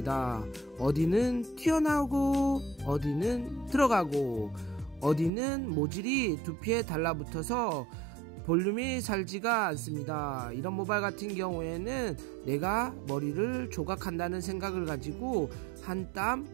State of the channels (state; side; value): drops out; left; at 5.3 s